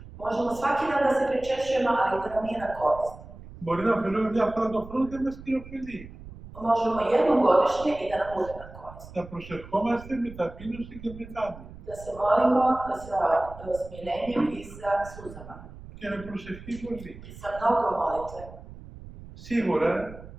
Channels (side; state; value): right; noise; rumble, 16 dB below the sound